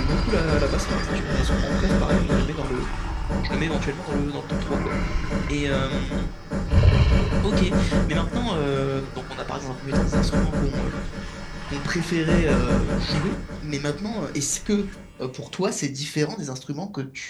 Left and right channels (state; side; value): identical; both; correlation 1.00